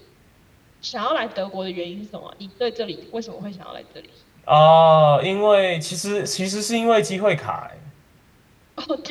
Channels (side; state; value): both; identical; correlation 1.00